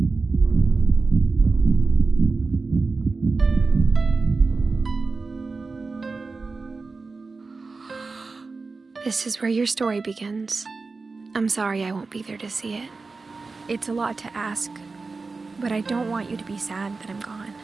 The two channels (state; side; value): quieter; left; 4.0 dB